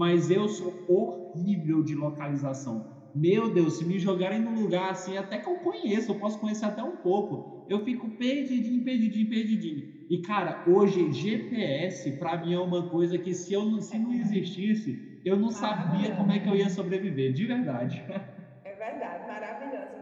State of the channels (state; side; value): identical; both; correlation 1.00